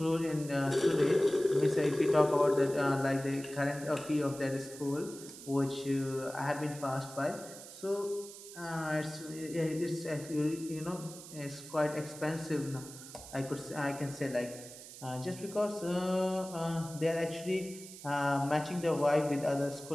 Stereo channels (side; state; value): right; noise; hiss, 15 dB below the sound